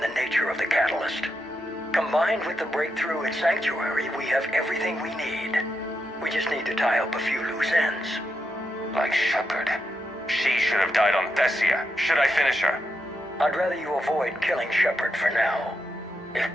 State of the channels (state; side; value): normal; both; correlation 0.84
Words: the nature of the catalyst. Combined with the breakthrough at Sanctuary, we have everything we need. We just need to tie up a few loose ends. Like Shepard. She should have died on Thessia. Should I finish her? I'd rather you avoid killing Shepard for now, if